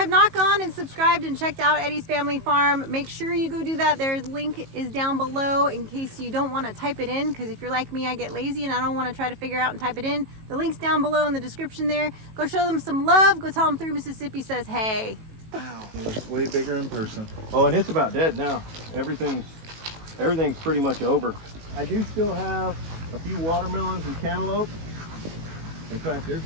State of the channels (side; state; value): left; late; 18 ms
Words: not gone and subscribed and checked out Eddy's Family Farm, make sure you go do that. Their link is down below in case you don't want to type it in, because if you're like me, I get lazy and I don't want to try to figure out and type it in. The link's down below in the description there. Go show them some love. Go tell them 3 Mississippi says hey. It's way bigger in person. Oh, and it's about dead now. Everything's pretty much over. I do still have a few watermelons and cantaloupe. In fact, there's